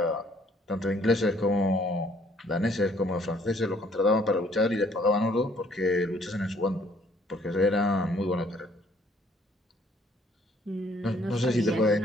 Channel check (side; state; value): both; normal; correlation 0.63